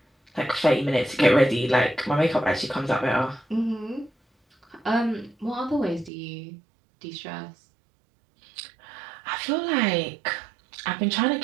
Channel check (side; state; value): left; drops out; at 6.1 s